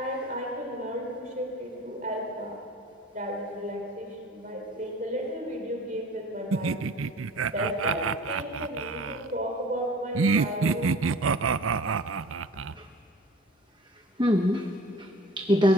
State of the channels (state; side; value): normal; both; correlation 0.44